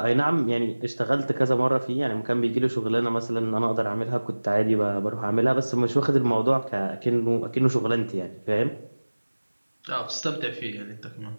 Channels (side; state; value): both; inverted; correlation -1.00